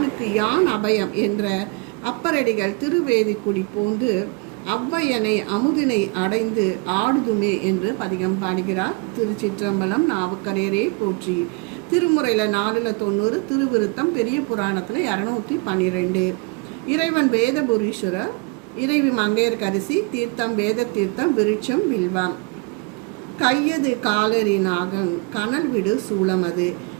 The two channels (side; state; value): left; quieter; 30.2 dB